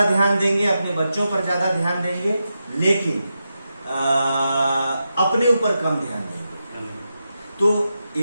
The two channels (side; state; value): both; inverted; correlation -0.88